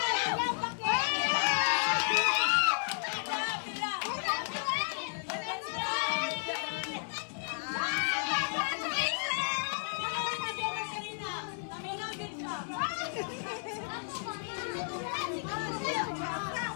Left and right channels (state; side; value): silent; right; 56 dB below the other